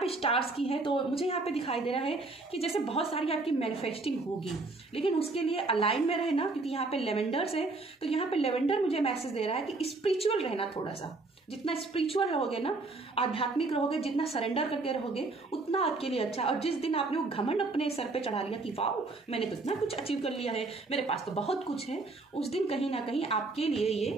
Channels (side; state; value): left; quieter; 3.4 dB